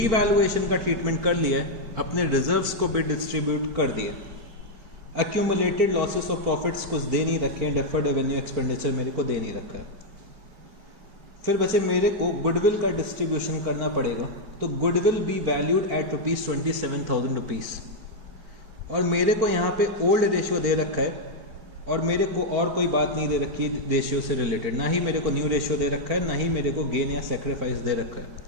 का ट्रीटमेंट कर लिया है, अपने रिजर्व्स को भी डिस्ट्रीब्यूट कर दिया। एक्यूमुलेटेड लॉसेस और प्रॉफिट्स कुछ दे नहीं रखे हैं, डेफर्ड रेवेन्यू एक्सपेंडिचर मेरे को दे नहीं रखा है। फिर बचे मेरे को गुडविल का डिस्ट्रीब्यूशन करना पड़ेगा। तो goodwill be valued at ₹27,000 rupees. और मेरे को यहाँ पे ओल्ड रेशियो दे रखा है और मेरे को और कोई बात नहीं दे रखी रेशियो से रिलेटेड, ना ही मेरे को न्यू रेशियो दे रखा है, ना ही मेरे को गेन या सेक्रीफाइस दे रखा है।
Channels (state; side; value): late; left; 4.5 ms